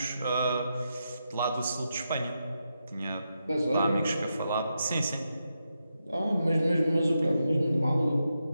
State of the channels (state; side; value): inverted; both; correlation -0.86